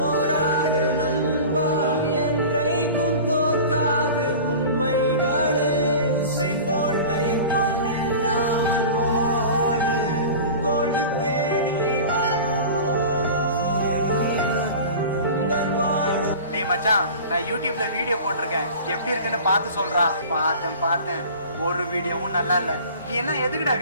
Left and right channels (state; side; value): inverted; both; correlation -0.38